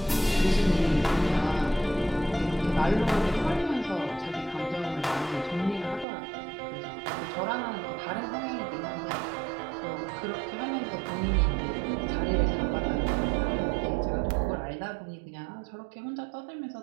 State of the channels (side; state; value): left; drops out; at 6.1 s